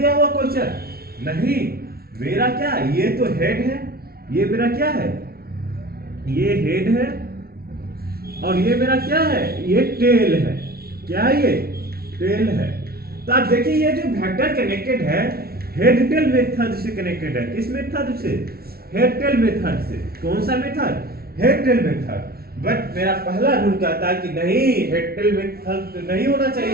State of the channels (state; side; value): late; left; 0.44 ms